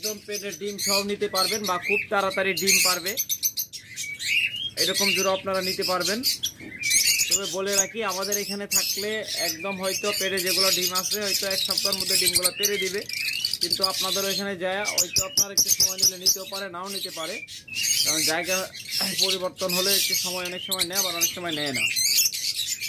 পেটের ডিম সহ নিতে পারবেন বা খুব তাড়াতাড়ি ডিম পারবে, এরকম জোড়া আপনারা নিতে পারবেন। তবে বলে রাখি, আমাদের এখানে থাকলে একদম হয়তো পেটে যেগুলো ডিম আছে হয়তো 1 সপ্তাহের মধ্যে ডিমগুলো পেরে দিবে, কিন্তু আপনাদের ওইখানে যায় হয়তো আপনার একটু সময় নিলে নিতেও পারে, নাও নিতে পারে। কারণ জায়গা পরিবর্তন হলে একটু সময় অনেক সময় নেয়, আবার অনেক সময় নেয় না।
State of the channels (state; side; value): identical; both; correlation 1.00